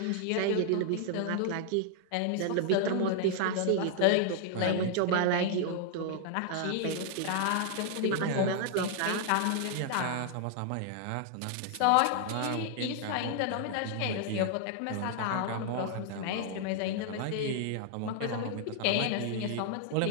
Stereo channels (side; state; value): both; different; correlation 0.00